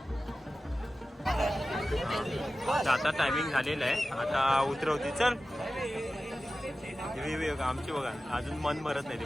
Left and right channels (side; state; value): both; normal; correlation 0.95